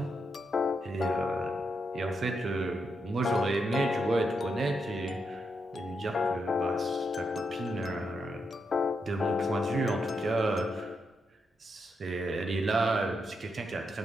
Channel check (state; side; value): normal; both; correlation 0.82